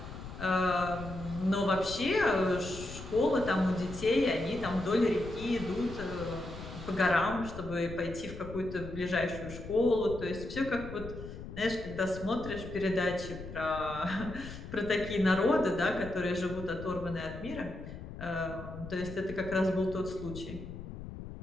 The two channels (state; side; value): noise; left; rumble, 11 dB below the sound